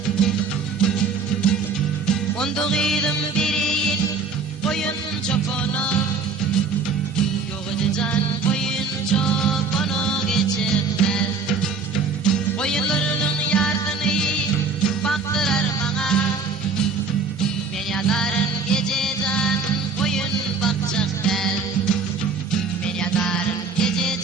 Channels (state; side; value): quieter; left; 4.6 dB